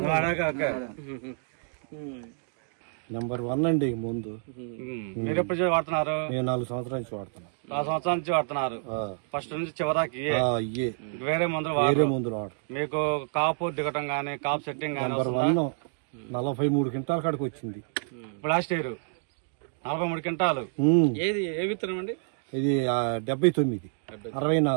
నెంబర్ 1 అండి ముందు. మీరు ఎప్పుడు వాడుతున్నారు? నేను 4 సంవత్సరాల నుంచి వాడుతున్నాను. 4 సంవత్సరాల నుంచి వాడుతున్నారు. ఫస్ట్ నుంచి చివరికి వేరే మందులు వాడు. మీకు కాపు దిగటం గానీ, కాపు సెట్టింగ్ గానీ? నెంబర్ 1 43 క్వింటాల కాడికి వచ్చింది లాస్ట్ ఇయర్. 43 క్వింటాలు. ఏది ఏ విత్తనం అండి? ఇది 79,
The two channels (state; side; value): silent; left; digital silence